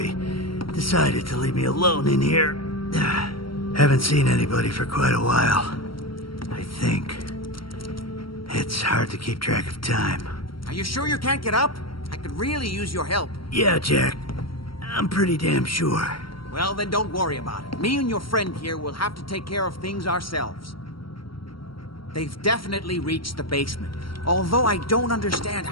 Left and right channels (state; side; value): late; right; 0.74 ms